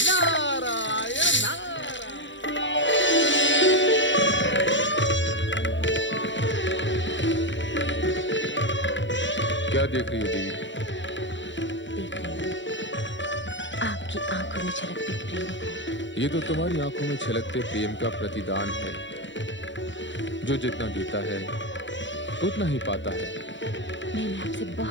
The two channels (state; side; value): late; right; 0.54 ms